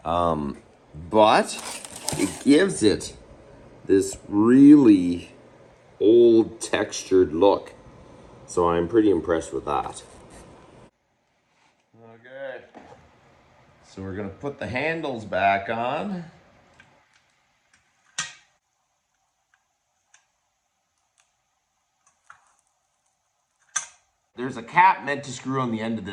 But it gives it this really old textured look. So I'm pretty impressed with that. Okay. So we're gonna put the handles back on. There's a cap meant to screw on the end of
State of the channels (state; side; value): identical; both; correlation 1.00